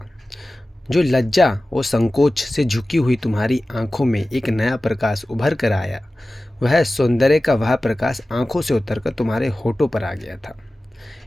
जो लज्जा और संकोच से झुकी हुई तुम्हारी आंखों में एक नया प्रकाश उभर कर आया, वह सौंदर्य का वह प्रकाश आंखों से उतरकर तुम्हारे होठों पर आ गया था।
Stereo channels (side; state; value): both; normal; correlation 0.96